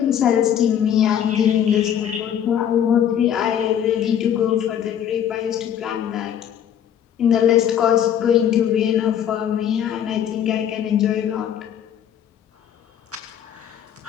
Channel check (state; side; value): quieter; right; 9.5 dB